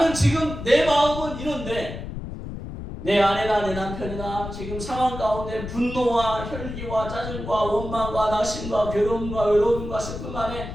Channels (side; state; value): left; noise; rumble, 8 dB below the sound